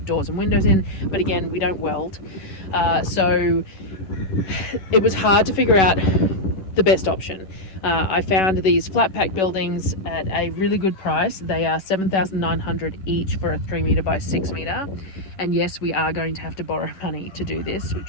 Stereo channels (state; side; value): late; right; 11 ms